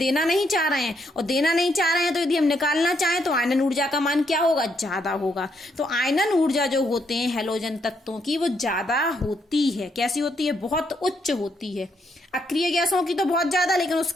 नहीं चाह रहे हैं। और देना नहीं चाह रहे हैं तो यदि हम निकालना चाहें तो आयनन ऊर्जा का मान क्या होगा? ज्यादा होगा। तो आयनन ऊर्जा जो होते हैं हैलोजन तत्वों की वो ज्यादा होती है। कैसी होती है? बहुत उच्च होती है। अक्रिय गैसों की तो बहुत ज्यादा, लेकिन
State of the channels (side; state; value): both; normal; correlation 0.75